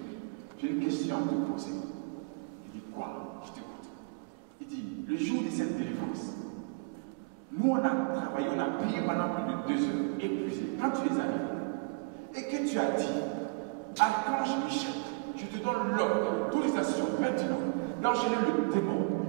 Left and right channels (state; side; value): quieter; left; 30.3 dB